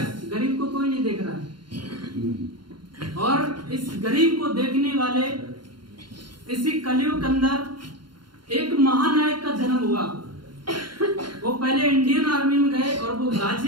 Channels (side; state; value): left; late; 0.72 ms